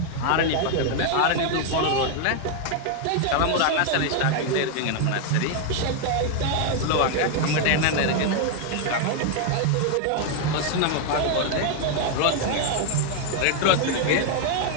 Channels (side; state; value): both; different; correlation 0.00